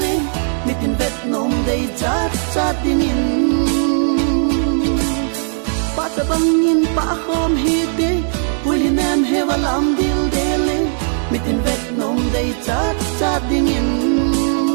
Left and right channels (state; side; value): silent; left; digital silence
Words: mi tin vết nồng đầy chát chát đi nhìn pa sa bang nhìn pa không hi tin vui thì em hay và làm điều để lên mi tin vết nồng đầy chát chát đi nhìn